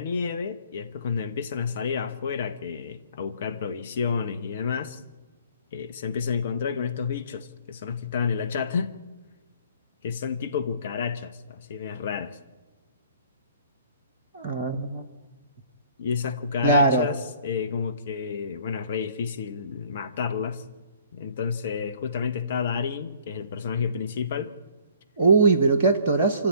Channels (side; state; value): both; inverted; correlation -0.56